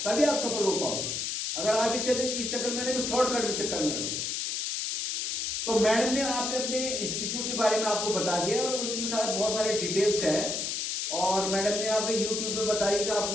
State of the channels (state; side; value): noise; left; hiss, 2 dB below the sound